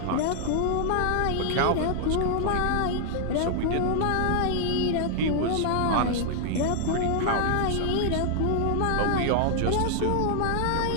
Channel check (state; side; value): different; both; correlation 0.00